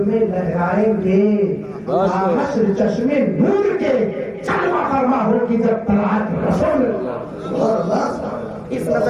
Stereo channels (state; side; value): identical; both; correlation 1.00